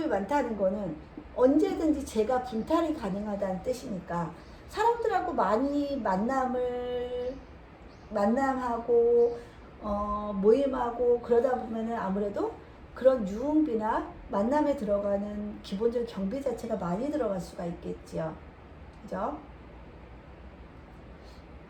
많다는 거는 언제든지 제가 분탈이 가능하다는 뜻이니까 사람들하고 많이 만남하고 모임하고 그러다 보면은 아무래도 그런 유흥비나 만남에 들어가는 기본적인 경비 자체가 많이 들어갈 수가 있겠지요. 그죠?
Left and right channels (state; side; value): identical; both; correlation 1.00